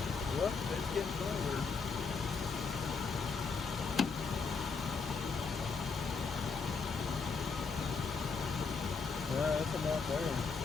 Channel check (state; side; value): quieter; right; 4.9 dB